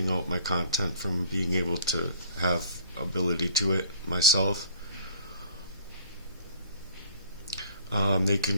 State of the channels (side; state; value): both; inverted; correlation -0.53